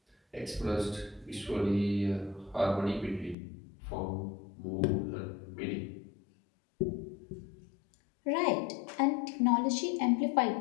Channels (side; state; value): right; drops out; at 3.4 s